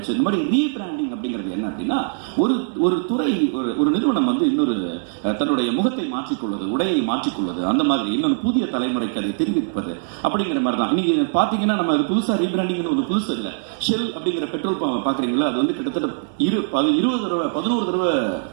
இந்த மாதிரி ரீபிராண்டிங் அப்படிங்கிறது என்ன அப்படின்னா, ஒரு துறை, ஒரு நிறுவனம் வந்து இன்னொரு தன்னுடைய முகத்தை மாற்றிக்கொள்வது, உடையை மாற்றிக்கொள்வது, அந்த மாதிரி இன்னொரு புதிய தலைமுறைக்கு அதை தெரிவிப்பது அப்படிங்கிற மாதிரி தான். இன்னைக்கு பாத்தீங்கன்னா நம்ம அது புதுசா ரீபிராண்டிங் ஒரு புதுசு இல்லை. ஷெல் அப்படிங்கிற பெட்ரோல் பம்ப் பாக்குறீங்களா, அது வந்து கிட்டத்தட்ட 11 தடவை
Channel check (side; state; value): left; silent; digital silence